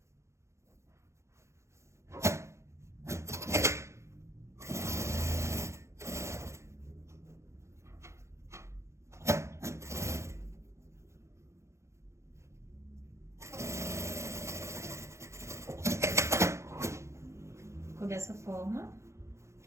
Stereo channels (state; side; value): late; left; 0.14 ms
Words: Ficou dessa forma.